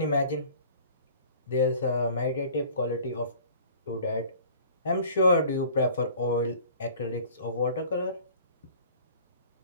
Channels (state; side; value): inverted; both; correlation -0.48